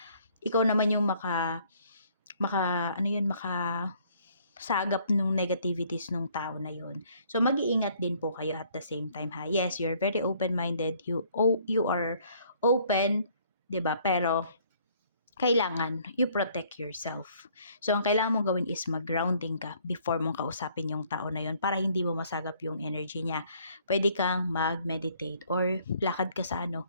ikaw naman yung sagap nung negativities nung tao na yun. So, mag-iingat din po kayo at the same time ha. Yes, you're very open-minded. You are open, 'di ba? Pero kailangan you protect yourself. So, ang kailangan mong gawin is mag-grounding ka before mong kausapin yung tao na yun para hindi mo masagap yung energy niya. Pwede kang mag-meditate or lakad ka sa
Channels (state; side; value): inverted; both; correlation -0.62